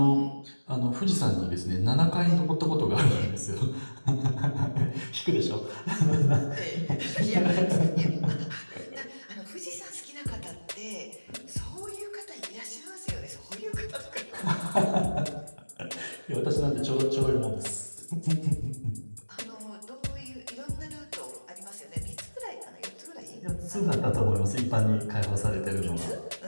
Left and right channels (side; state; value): both; inverted; correlation -1.00